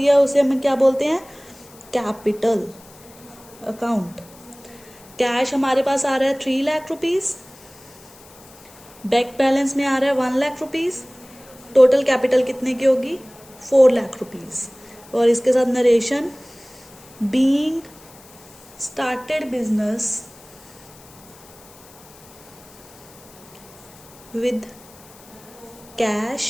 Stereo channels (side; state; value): left; noise; hiss, 23 dB below the sound